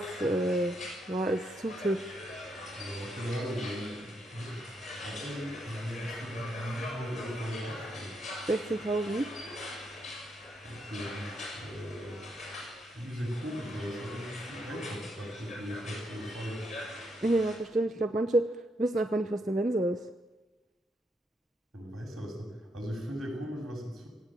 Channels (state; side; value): normal; both; correlation 0.78